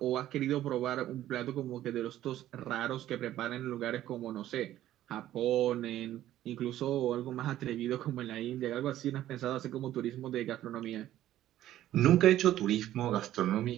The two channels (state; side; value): quieter; left; 13.2 dB